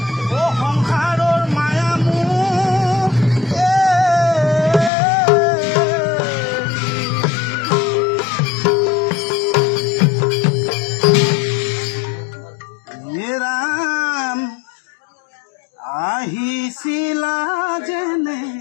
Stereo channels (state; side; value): drops out; right; at 4.9 s